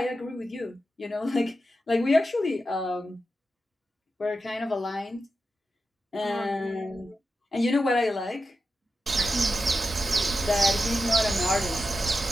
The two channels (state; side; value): normal; both; correlation 0.90